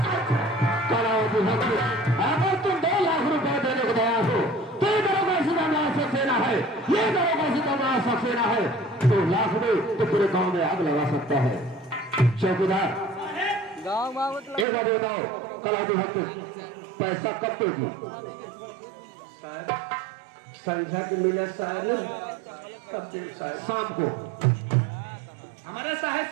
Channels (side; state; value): left; drops out; at 14.7 s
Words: अगर तुम 2 लाख रुपए देने को तैयार हो तो ये दरोगा सिकंदर सक्सेना है, ये दरोगा सिकंदर सक्सेना है। 2 लाख में तो पूरे गांव में आग लगा सकता है। चौकीदार एक बार बताओ, कलादी भक्त पैसा कब दोगी? संध्या के मिले साहब कब दे साहब? शाम को। हमारे साहब